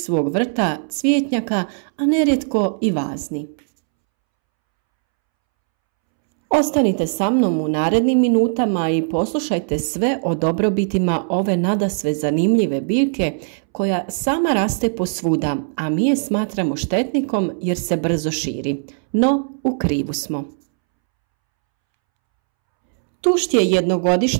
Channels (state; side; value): silent; left; 66 dB below the other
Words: vrta, cvjetnjaka, a nerijetko i vazni. Ostanite sa mnom u narednim minutama i poslušajte sve o dobrobitima ove nadasve zanimljive biljke koja sama raste posvuda, a mi je smatramo štetnikom jer se brzo širi. No, u krivu smo. Tušt je